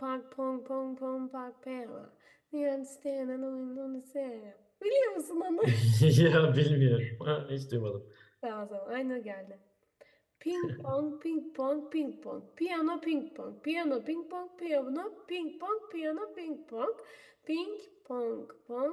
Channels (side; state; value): both; identical; correlation 1.00